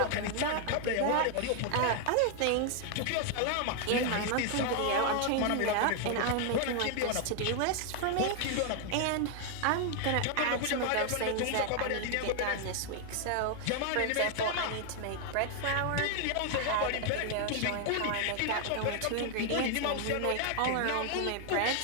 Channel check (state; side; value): different; both; correlation 0.00